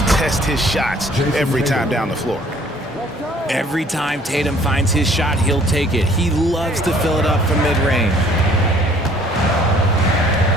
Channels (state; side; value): normal; both; correlation 0.57